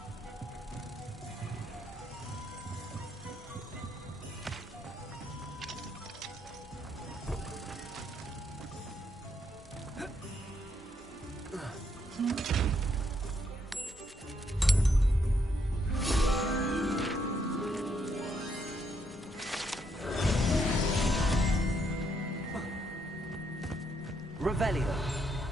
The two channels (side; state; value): both; normal; correlation 0.75